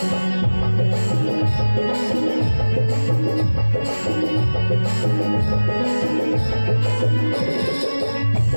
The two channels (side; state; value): both; inverted; correlation -1.00